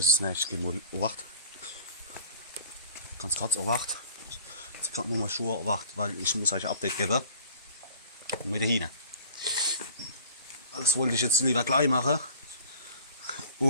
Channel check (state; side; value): inverted; both; correlation -0.46